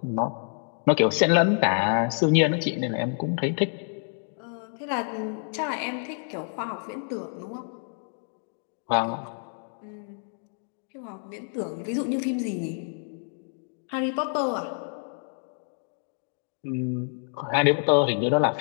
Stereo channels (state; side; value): silent; right; 60 dB below the other